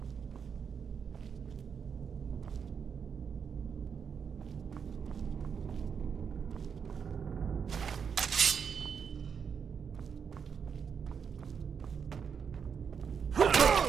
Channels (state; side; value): quieter; left; 6.7 dB